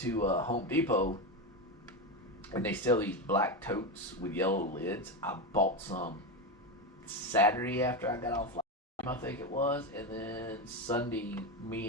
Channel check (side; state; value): both; normal; correlation 0.14